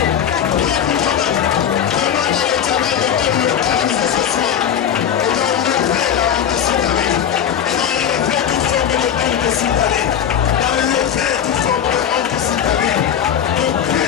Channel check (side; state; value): right; quieter; 9.0 dB